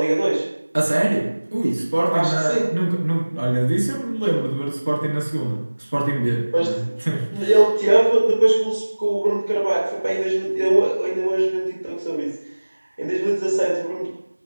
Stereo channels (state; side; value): inverted; both; correlation -1.00